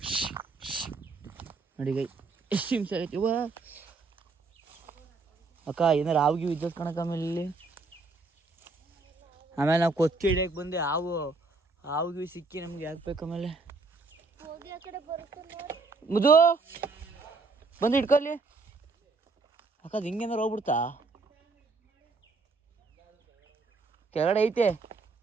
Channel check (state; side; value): quieter; left; 3.8 dB